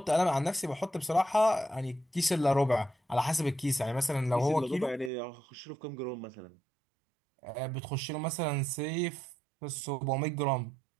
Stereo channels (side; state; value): left; drops out; at 5.1 s